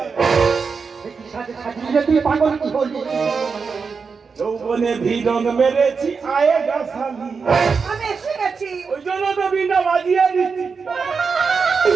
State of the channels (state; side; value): quieter; left; 5.2 dB